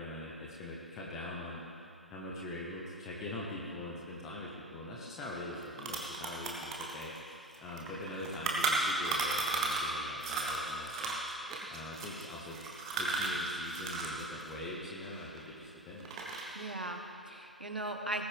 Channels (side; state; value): both; normal; correlation 0.32